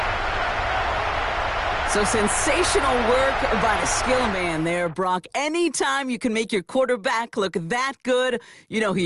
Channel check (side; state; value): both; identical; correlation 1.00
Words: So sensational work by the skill man there, Brock. Anytime you can make your quarterback look that good, you know